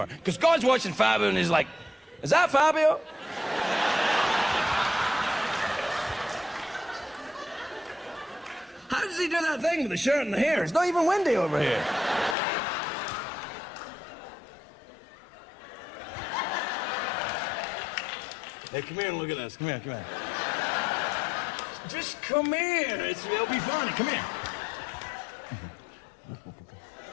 Because God's watching Fabio and he's like, is that Fabio? How does he do that thing with the shirt and the hair? It's not even windy over here. Hey, come here and look at this. Come here, come here. Just come here. It'll be fun. Come here.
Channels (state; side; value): drops out; right; at 12.4 s